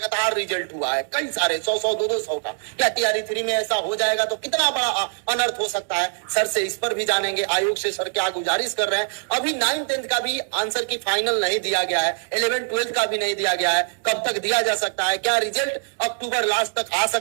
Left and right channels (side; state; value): left; silent; digital silence